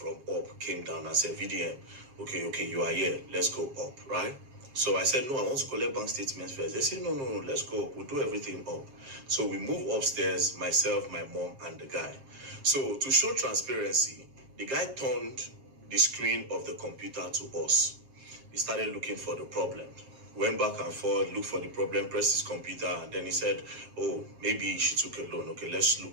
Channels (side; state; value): left; late; 7.5 ms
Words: up came down and said, VDM, okay, you are here. Let's go up, right? So I said, no, I want to collect bank statements first. They said, no, let's go up. We'll do everything up. So we move upstairs, myself, my mom, and the guy. So to show transparency, the guy turned the screen of the computer to us. He started looking for the problem. Went back and forth, looked for the problem, pressed his computer, and then he said, oh, maybe she took a loan. Okay, let's